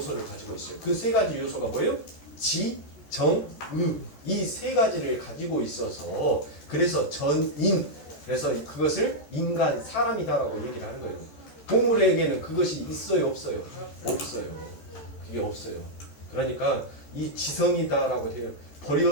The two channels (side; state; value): right; late; 14 ms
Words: 가지고 있어요. 그 세 가지 요소가 뭐예요? 지, 정, 의. 이 세 가지를 가지고 있어서 그래서 전인. 그래서 그것을 인간, 사람이다라고 얘기를 하는 거예요. 동물에게는 그것이 있어요, 없어요? 없어요. 그게 없어요. 그러니까 이 지성이다라고 해요.